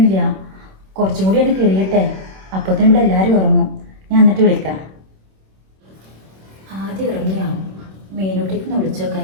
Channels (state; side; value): late; left; 26 ms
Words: കുറച്ചും കൂടി എനിക്ക് കഴിയട്ടെ. അപ്പത്തേനും ഇവിടെ എല്ലാവരും ഉറങ്ങും. ഞാൻ എന്നിട്ട് വിളിക്കാം. ആദ്യം ഇറങ്ങിയോ? മീനൂട്ടിക്കൊന്ന്